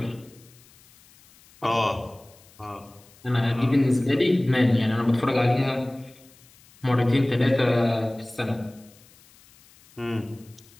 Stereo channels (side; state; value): left; noise; hiss, 27 dB below the sound